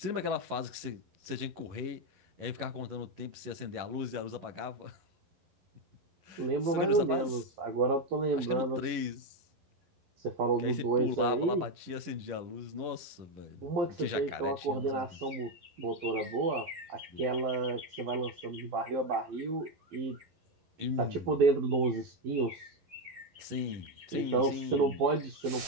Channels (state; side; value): late; left; 11 ms